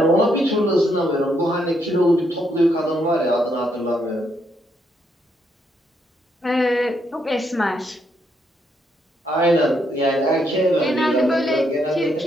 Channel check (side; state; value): both; normal; correlation 0.76